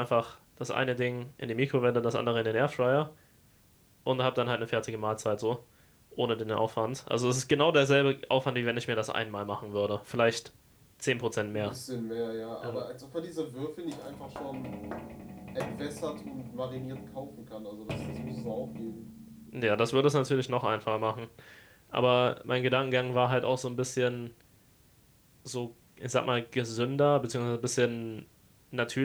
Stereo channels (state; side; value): identical; both; correlation 1.00